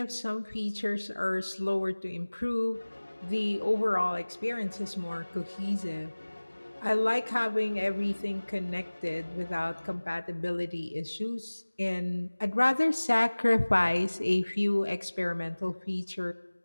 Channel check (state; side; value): inverted; both; correlation -1.00